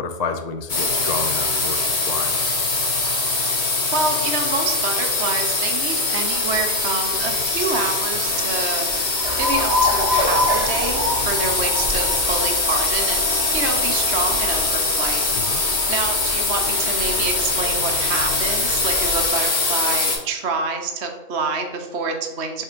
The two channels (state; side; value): late; left; 2.2 ms